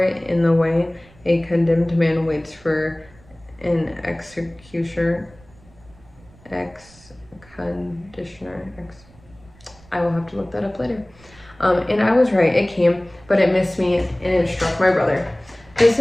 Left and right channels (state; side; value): noise; right; rumble, 26 dB below the sound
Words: it in the way a condemned man waits for an executioner. conditioner. I will have to look that up later. And I was right, it came, but it missed me and it struck my brother. The